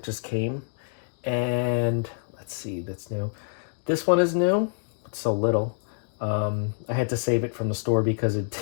just came. And let's see, that's new. This one is new. It's so little. I had to save it from the store because it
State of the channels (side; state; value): right; silent; digital silence